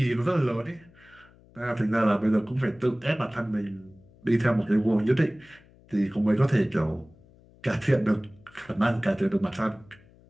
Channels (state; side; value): noise; left; hum, 27 dB below the sound